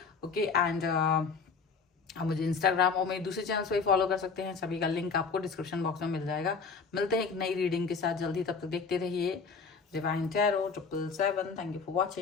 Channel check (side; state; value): right; quieter; 5.1 dB